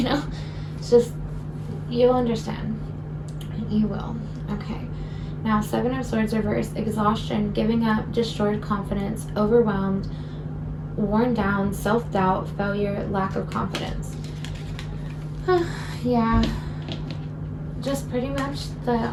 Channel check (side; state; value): both; identical; correlation 1.00